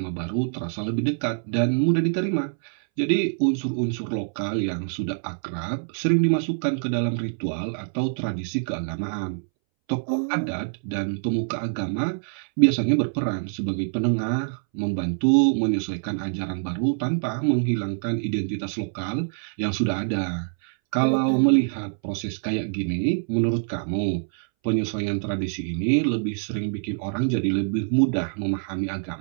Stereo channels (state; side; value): silent; left; 62 dB below the other